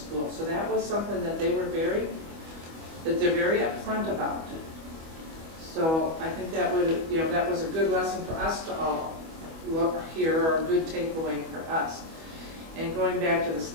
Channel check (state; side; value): late; left; 25 ms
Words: So that was something that they're very upfront about. So I think that would, you know, that was a good lesson for us to all look here, or a good takeaway for us. And going back to the